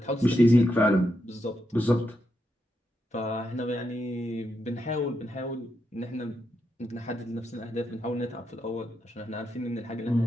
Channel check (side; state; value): both; normal; correlation 0.83